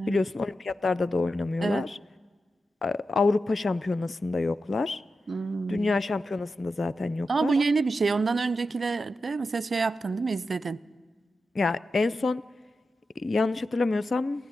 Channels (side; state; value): both; normal; correlation 0.90